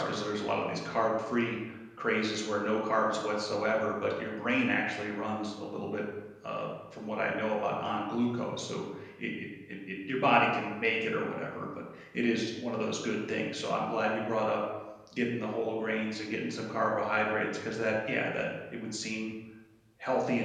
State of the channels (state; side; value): identical; both; correlation 1.00